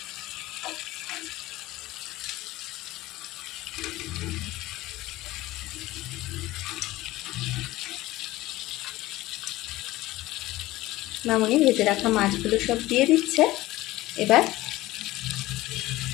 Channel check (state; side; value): quieter; right; 17.5 dB